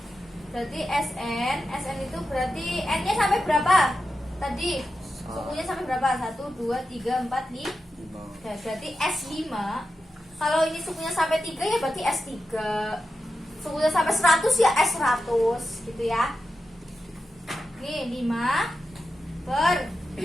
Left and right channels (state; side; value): normal; both; correlation 0.90